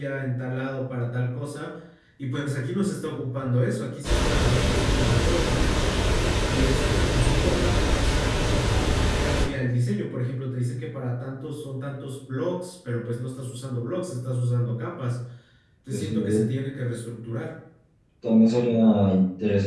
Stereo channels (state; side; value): identical; both; correlation 1.00